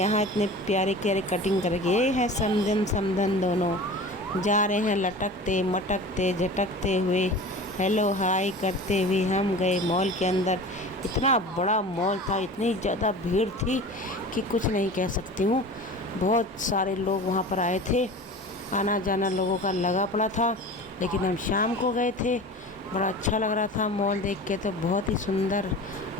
इतने प्यारे प्यारे कटिंग करके ये है समधन समधन दोनों जा रहे हैं लटकते मटकते झटकते हुए, हेलो हाय करते हुए। हम गए मॉल के अंदर। इतना बड़ा मॉल था, इतनी ज़्यादा भीड़ थी कि कुछ नहीं कह सकती हूँ। बहुत सारे लोग वहाँ पर आए थे, आना जाना लोगों का लगा पड़ा था। लेकिन हम शाम को गए थे, बड़ा अच्छा लग रहा था मॉल देख के। तो बहुत ही सुंदर,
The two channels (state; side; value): normal; both; correlation 0.36